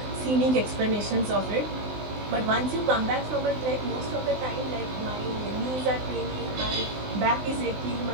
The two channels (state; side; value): late; left; 19 ms